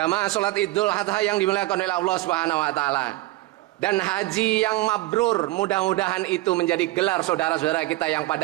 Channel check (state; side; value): quieter; left; 18.2 dB